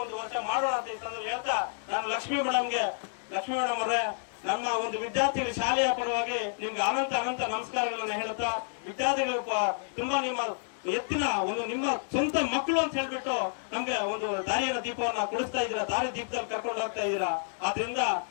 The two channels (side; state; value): right; silent; 58 dB below the other